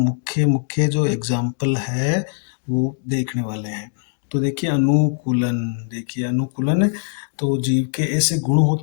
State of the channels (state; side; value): silent; right; digital silence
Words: मुख्य जो एग्जाम्पल है वो देखने वाले हैं। तो देखिए अनुकूलन तो जीव के ऐसे गुण